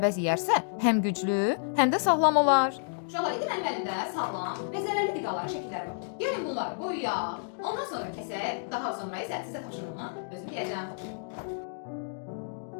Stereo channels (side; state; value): right; silent; digital silence